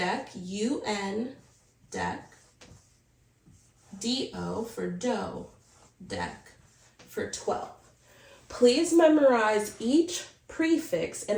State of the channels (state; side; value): identical; both; correlation 1.00